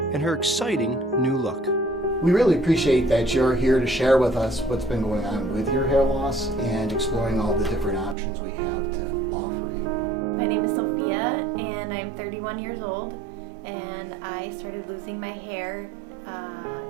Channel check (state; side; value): drops out; left; at 8.2 s